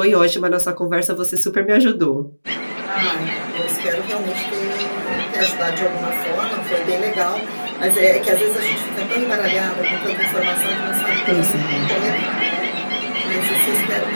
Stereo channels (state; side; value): inverted; both; correlation -1.00